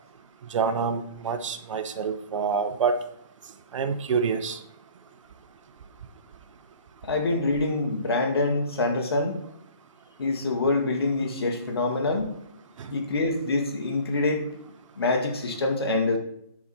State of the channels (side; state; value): both; inverted; correlation -0.45